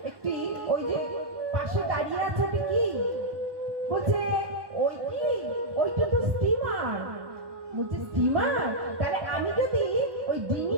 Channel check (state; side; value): late; left; 1.2 ms